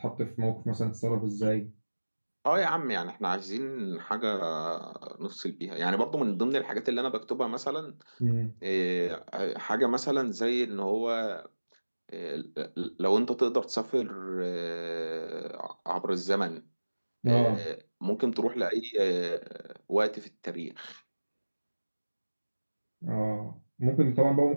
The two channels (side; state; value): both; inverted; correlation -1.00